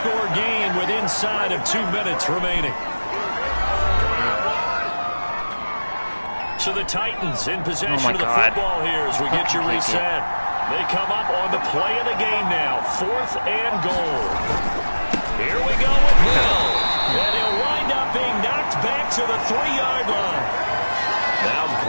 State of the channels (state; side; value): inverted; both; correlation -1.00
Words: game with inside of 2 minutes remaining. So the Titans in possession of the football here as we get you reset. They come up on the play of the game now. 4th and goal. Here we go with Hill. And he'll wind up being knocked back to the 3-yard line. Now